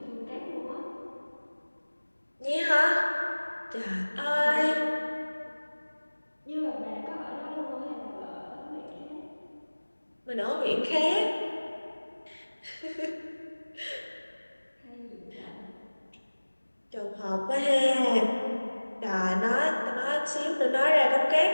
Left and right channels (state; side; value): inverted; both; correlation -1.00